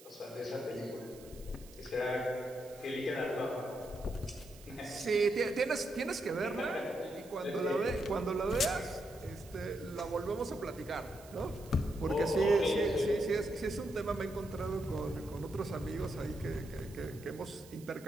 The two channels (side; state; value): right; noise; hiss, 21 dB below the sound